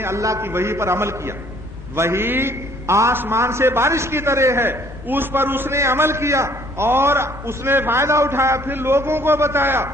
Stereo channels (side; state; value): both; normal; correlation 0.59